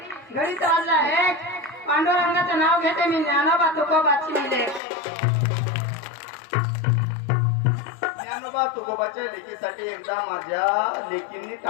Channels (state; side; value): drops out; right; at 4.8 s